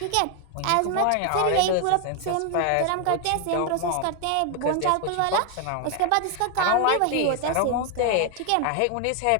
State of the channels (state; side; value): different; both; correlation 0.00